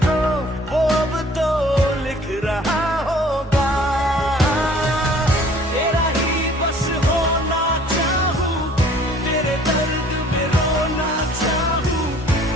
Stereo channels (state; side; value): normal; both; correlation 0.54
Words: वो अब तो लिख रहा होगा। तेरा ही बस होना चाहूं, तेरे दर्द में रोना चाहूं,